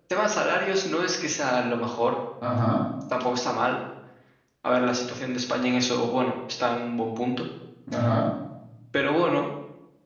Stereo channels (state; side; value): identical; both; correlation 1.00